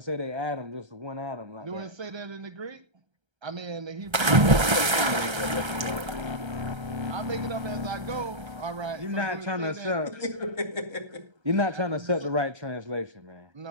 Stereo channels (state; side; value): late; left; 1.3 ms